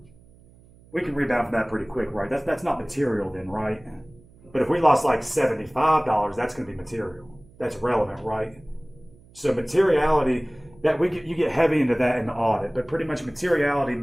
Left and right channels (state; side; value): noise; right; hum, 26 dB below the sound